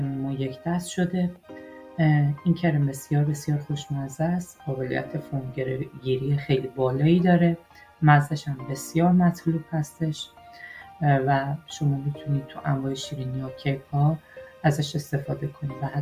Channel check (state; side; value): identical; both; correlation 1.00